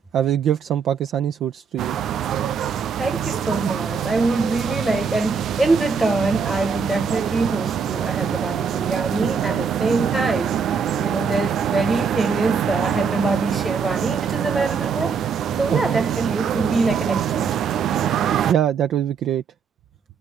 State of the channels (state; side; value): quieter; left; 5.7 dB